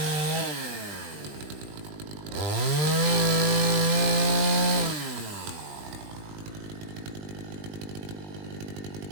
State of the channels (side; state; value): left; late; 20 ms